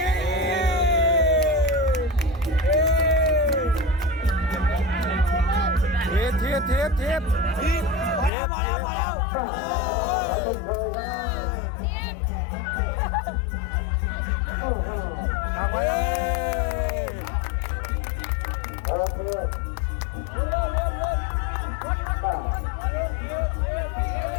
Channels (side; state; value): right; drops out; at 8.3 s